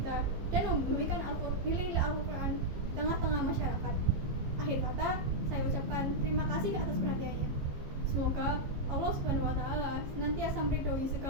dan membumikan nilai-nilai Al-Quran di tengah-tengah masyarakat. Akhir kata, saya ucapkan terima kasih atas perhatiannya. Semoga Allah SWT senantiasa meridhoi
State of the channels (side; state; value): left; late; 15 ms